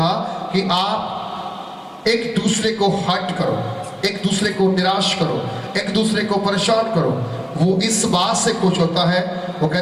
कि आप एक दूसरे को हर्ट करो, एक दूसरे को निराश करो, एक दूसरे को परेशान करो। वो इस बात से खुश होता है, वो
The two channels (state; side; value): identical; both; correlation 1.00